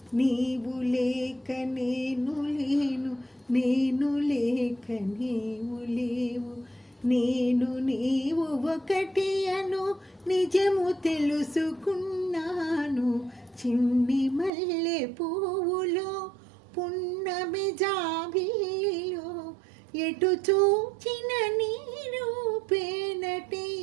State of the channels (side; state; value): left; drops out; at 14.5 s